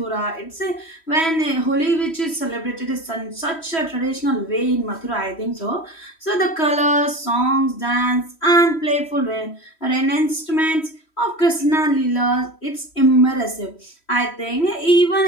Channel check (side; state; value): right; late; 3.1 ms